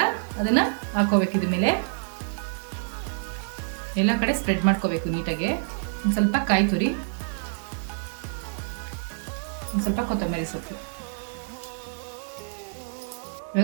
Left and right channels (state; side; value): silent; left; 58 dB below the other